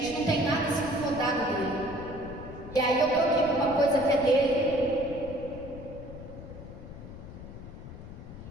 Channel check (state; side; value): noise; left; rumble, 13 dB below the sound